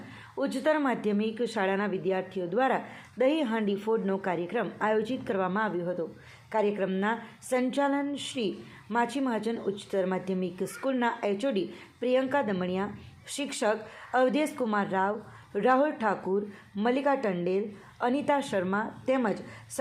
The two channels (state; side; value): identical; both; correlation 1.00